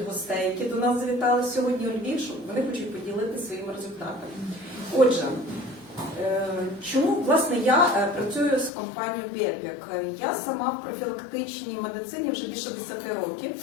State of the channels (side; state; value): right; drops out; at 8.7 s